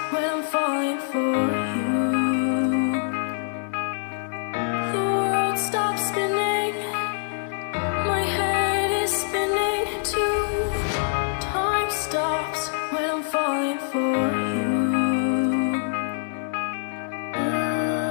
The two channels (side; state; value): right; silent; digital silence